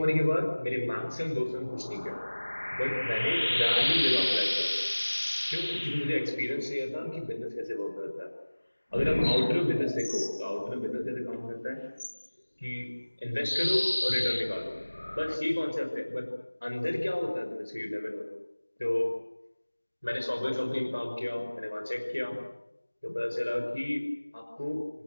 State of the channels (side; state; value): both; inverted; correlation -1.00